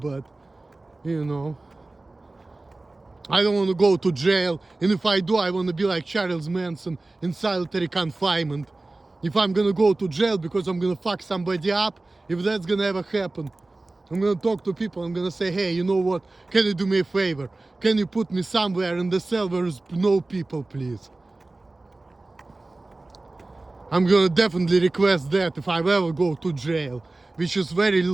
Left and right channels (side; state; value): left; quieter; 3.0 dB